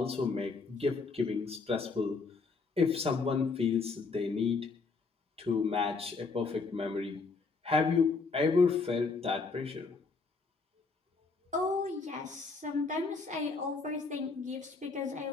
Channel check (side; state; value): right; quieter; 4.3 dB